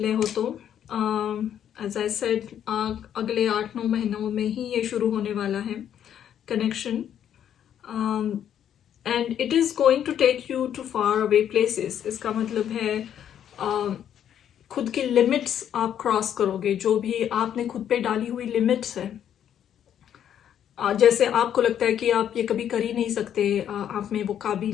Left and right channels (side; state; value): right; quieter; 9.7 dB